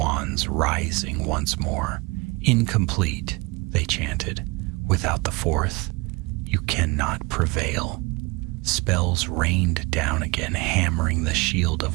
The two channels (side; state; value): left; quieter; 25.7 dB